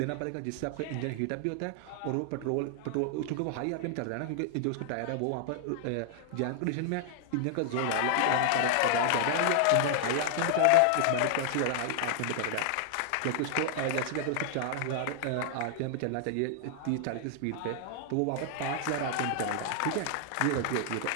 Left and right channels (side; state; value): both; different; correlation 0.00